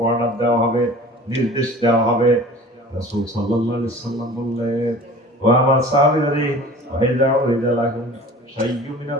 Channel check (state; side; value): normal; both; correlation 0.42